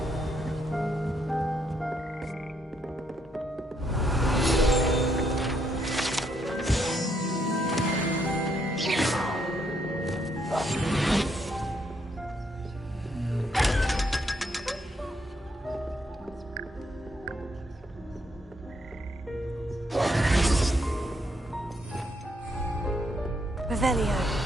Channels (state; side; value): normal; both; correlation 0.75